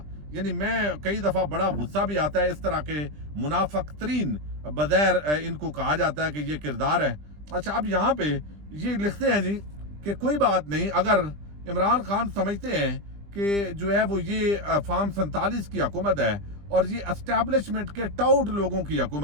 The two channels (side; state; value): left; late; 20 ms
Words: यानी मैं कई दफा बड़ा गुस्सा भी आता है इस तरह के मुनाफिक तरीन बगैर इनको कहा जाता है कि ये किरदार है। अच्छा, अब यहाँ पे ये लिखते हैं जी کہ کوئی بات نہیں، اگر عمران خان سمجھتے ہیں کہ جو ہے وہ یہ فارم 47 کی حکومت ہے اور یہ اسٹیبلشمنٹ کے ٹاؤٹ لوگوں کی